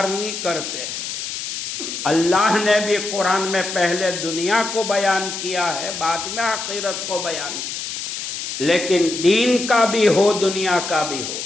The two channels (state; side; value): noise; left; hiss, 6 dB below the sound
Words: نہیں کرتے۔ اللہ نے بھی قرآن میں پہلے دنیا کو بیان کیا ہے، بعد میں آخرت کو بیان کیا، لیکن دین کا بھی ہو دنیا کا بھی ہو۔